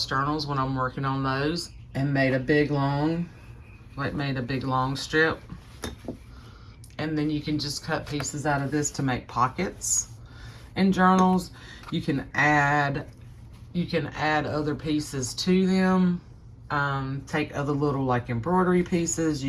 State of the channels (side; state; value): both; identical; correlation 1.00